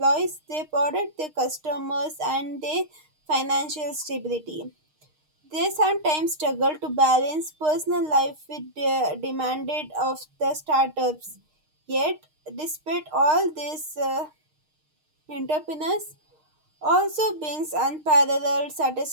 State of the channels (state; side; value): late; left; 6.5 ms